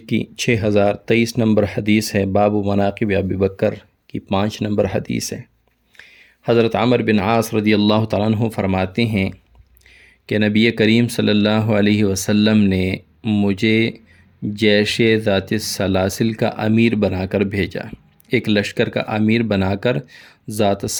کی 6023 نمبر حدیث ہے۔ باب مناقب ابی بکر کی 5 نمبر حدیث ہے۔ حضرت عمرو بن عاص رضی اللہ تعالیٰ عنہ فرماتے ہیں کہ نبی کریم صلی اللہ علیہ وسلم نے مجھے جیش ذات السلاسل کا امیر بنا کر بھیجا، ایک لشکر کا امیر بنا کر ذات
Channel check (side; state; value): both; identical; correlation 1.00